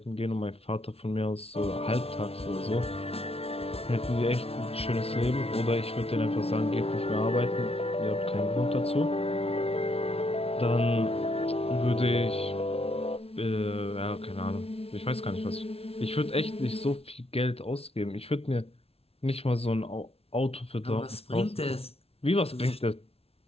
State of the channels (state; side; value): late; right; 0.29 ms